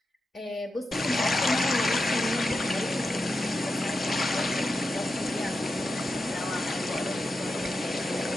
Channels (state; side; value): normal; both; correlation 0.88